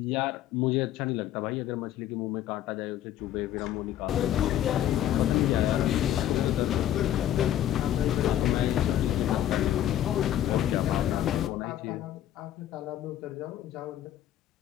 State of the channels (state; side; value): quieter; right; 11.8 dB